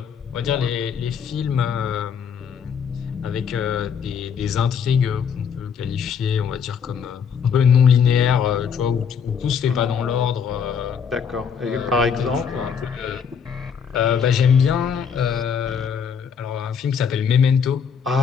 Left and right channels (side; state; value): right; quieter; 7.0 dB